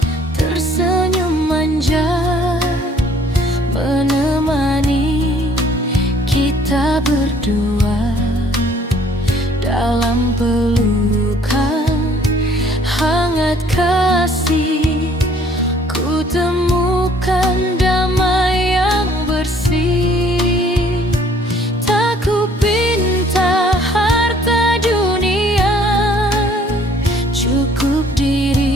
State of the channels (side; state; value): both; normal; correlation 0.59